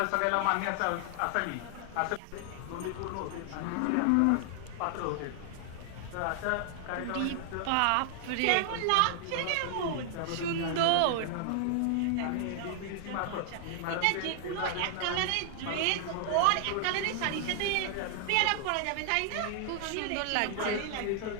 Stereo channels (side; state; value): both; different; correlation 0.00